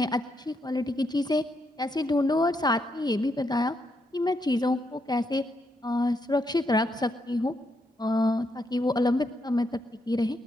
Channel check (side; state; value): both; normal; correlation 0.79